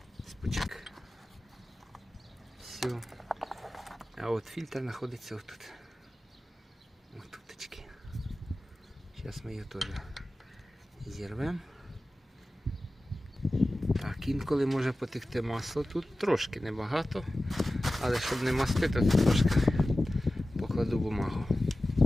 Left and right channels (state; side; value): normal; both; correlation 0.95